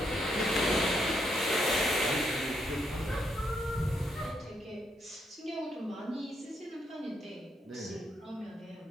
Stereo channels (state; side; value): normal; both; correlation 0.77